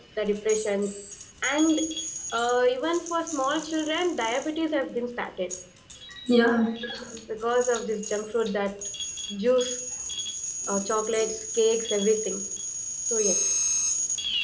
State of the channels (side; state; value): both; identical; correlation 1.00